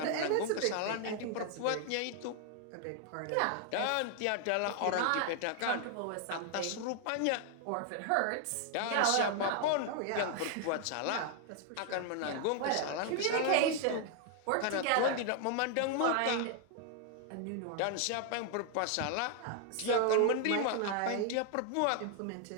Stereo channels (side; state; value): both; different; correlation 0.00